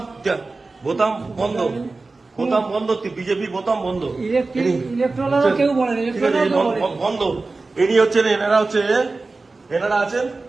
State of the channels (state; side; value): quieter; left; 3.6 dB